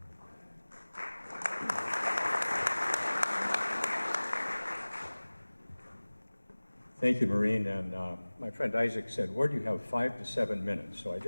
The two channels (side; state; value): both; inverted; correlation -1.00